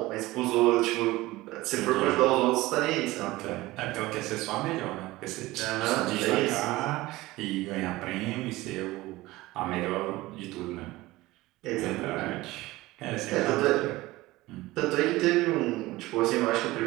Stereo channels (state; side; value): quieter; left; 19.0 dB